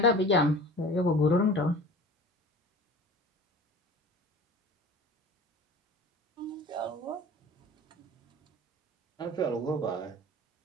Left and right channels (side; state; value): both; normal; correlation 0.40